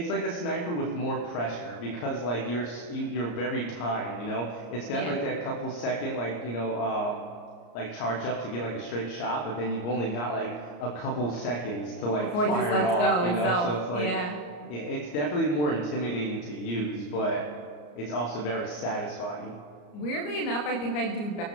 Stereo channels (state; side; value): late; right; 34 ms